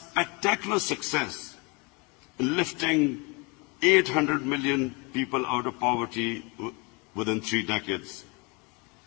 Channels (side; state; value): right; quieter; 29.9 dB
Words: success in lifting 800 million people out of poverty within 3 decades.